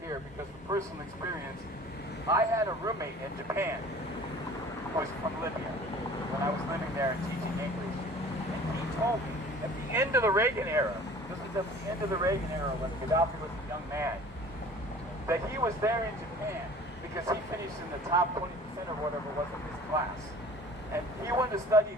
because from personal experience, I had a roommate in Japan who was from Libya when I was living there and teaching English. And he told me at the end of the Reagan era, this was at the end of the Reagan era when Gaddafi was a young man, that he was there in Japan because he finished in the top 20% or whatever it was of his class. And he wanted to study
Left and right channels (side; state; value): both; normal; correlation 0.46